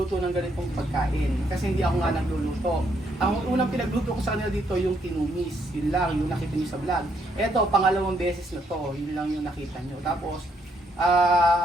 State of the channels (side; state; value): both; normal; correlation 0.73